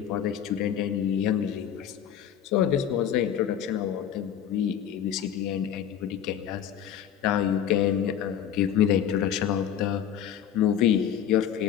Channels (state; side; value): quieter; right; 9.5 dB